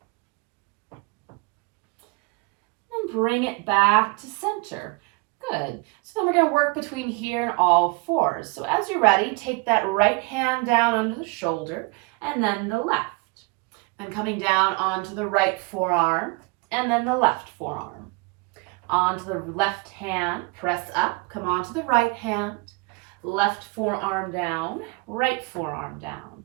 And bring it back to center. Good. So then we're going to work between here and all fours. So as you're ready, take that right hand down under the shoulder and then the left. Then coming down onto the right forearm and then the left forearm. Onto the left hand, press up, come onto the right hand. Left forearm down, right forearm down.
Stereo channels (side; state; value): left; quieter; 28.3 dB